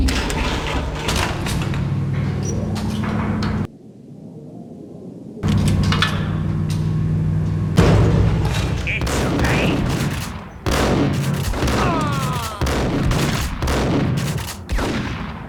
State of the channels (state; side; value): identical; both; correlation 1.00